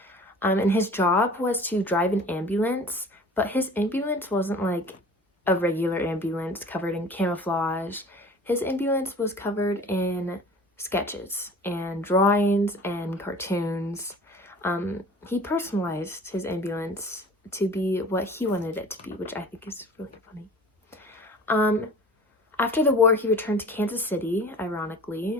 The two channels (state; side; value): normal; both; correlation 0.43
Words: And his job was to drive an ambulance, but his ambulance wasn't like a regular ambulance covered in camouflage. His ambulance was covered in sketches and drawings and cartoons. He personalized his ambulance to be what he wanted it to be, which I think is really funny. After the war, he returned to Kansas City,